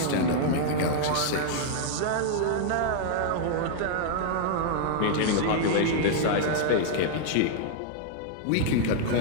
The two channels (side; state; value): both; different; correlation -0.01